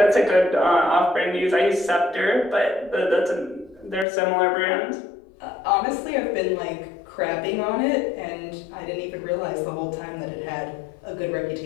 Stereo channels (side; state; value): right; drops out; at 4.0 s